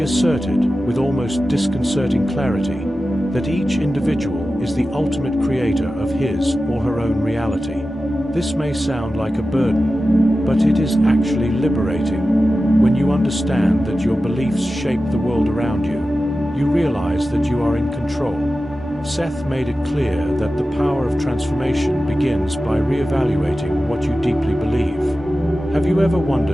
asserted, with almost disconcerting clarity, that each individual is the ultimate creator of his or her own reality. This may sound like a burden, but it is actually liberating. When you understand that your beliefs shape the world around you, you realize that you are in control. Seth made it clear that the power of transformation begins by reevaluating what you deeply believe. Have you ever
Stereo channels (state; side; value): normal; both; correlation 0.94